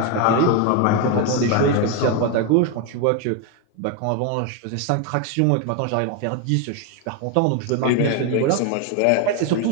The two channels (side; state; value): both; different; correlation 0.01